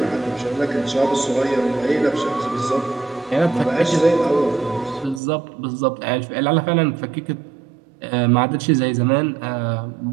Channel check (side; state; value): left; drops out; at 5.2 s